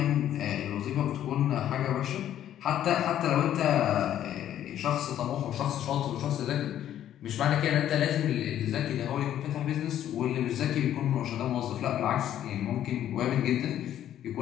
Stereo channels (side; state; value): right; quieter; 11.2 dB